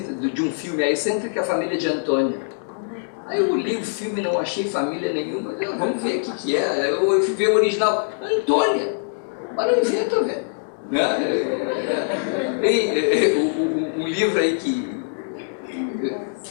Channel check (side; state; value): right; silent; digital silence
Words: de um filme, A Excêntrica Família de Antônio. Aí eu li o filme, não achei família nenhuma, vamos ver o que é. Eu fui ver o original, Antônia, mas não inventa, velho. O livro aí que